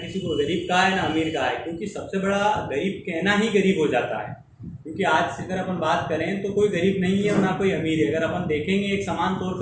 को गरीब कहा है ना अमीर कहा है, क्योंकि सबसे बड़ा गरीब कहना ही गरीब हो जाता है। क्योंकि आज से अगर अपन बात करें तो कोई गरीब नहीं है और ना कोई अमीर है। अगर अपन देखेंगे एक समान तौर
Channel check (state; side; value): identical; both; correlation 1.00